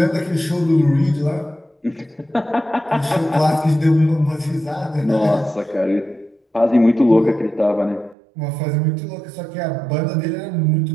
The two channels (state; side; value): drops out; left; at 8.2 s